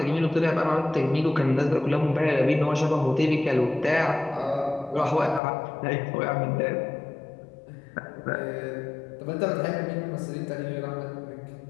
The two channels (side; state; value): right; drops out; at 5.4 s